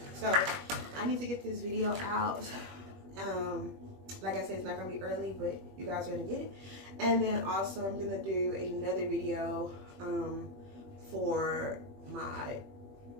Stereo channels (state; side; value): late; left; 21 ms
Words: So I need to get this video out. Like I said, it's not gonna be early, but you guys are gonna get it. And then also I'm gonna do another video for my